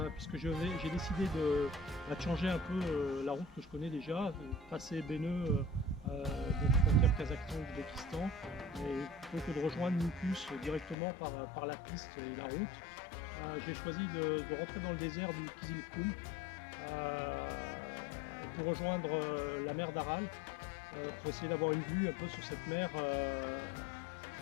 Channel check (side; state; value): right; drops out; at 11.0 s